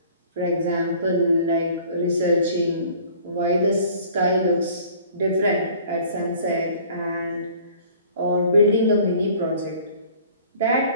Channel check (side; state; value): both; inverted; correlation -0.51